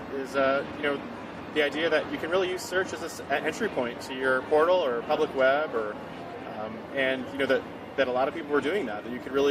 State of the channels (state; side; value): identical; both; correlation 1.00